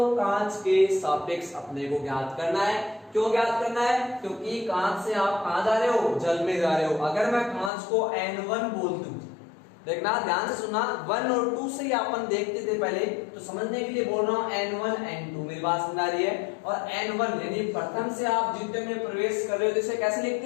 कांच के सापेक्ष अपने को ज्ञात करना है। क्यों ज्ञात करना है, क्योंकि कांच से आप कहां जा रहे हो, जल में जा रहे हो। अगर मैं कांच को N1 बोल दूं, देखना ध्यान से सुनना, 1 और 2 से ही अपन देखते थे पहले, तो समझने के लिए बोल रहा हूं N1 N2, मेरी बात समझ आ रही है। और N1 यानी प्रथम से आप द्वितीय में प्रवेश कर रहे हो, तो इसे कैसे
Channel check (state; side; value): drops out; right; at 7.7 s